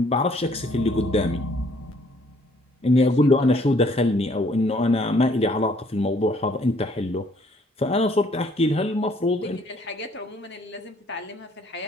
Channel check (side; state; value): both; normal; correlation 0.62